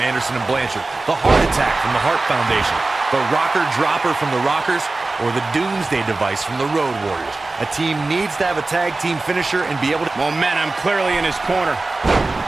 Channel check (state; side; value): quieter; left; 3.3 dB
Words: Anderson and Blanchard, the heart attack from the Hart Foundation, the rocker dropper from the Rockers, or the Doomsday device from the Road Warriors. A team needs to have a tag team finisher and be able to... Momentum clearly in his corner.